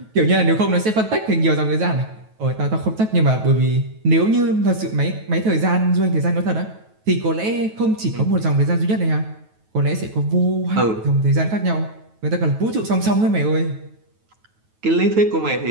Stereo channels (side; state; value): left; late; 9.2 ms